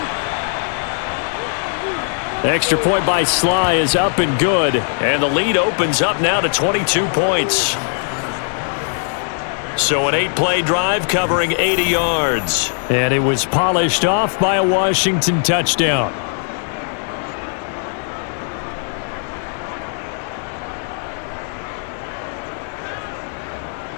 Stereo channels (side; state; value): right; silent; 66 dB below the other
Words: Extra point by Sly is up and good. And the lead opens up now to 22 points. So an 8-play drive covering 80 yards. And it was polished off by a Washington touchdown.